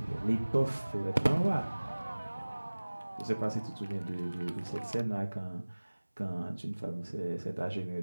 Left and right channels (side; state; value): both; inverted; correlation -1.00